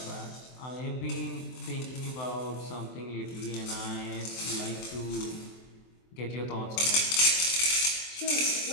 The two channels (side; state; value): right; late; 24 ms